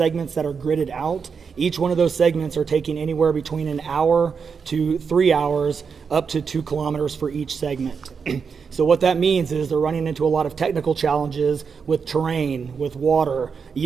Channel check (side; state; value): left; quieter; 5.9 dB